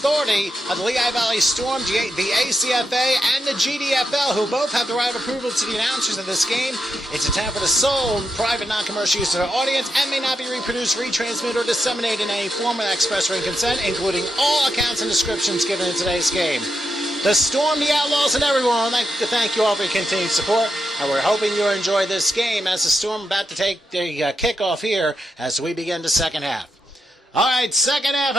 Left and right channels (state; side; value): normal; both; correlation 0.84